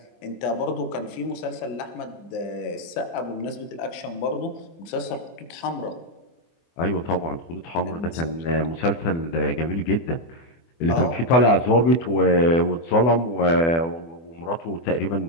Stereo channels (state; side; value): late; right; 24 ms